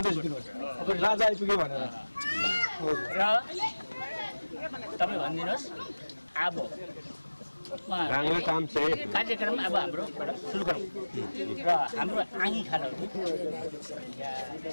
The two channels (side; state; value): both; inverted; correlation -1.00